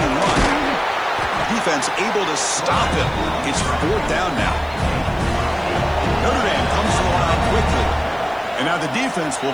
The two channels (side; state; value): right; noise; hiss, 29 dB below the sound